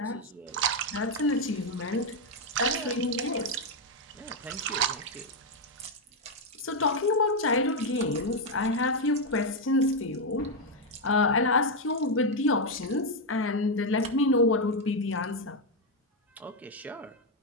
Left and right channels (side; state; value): both; normal; correlation 0.03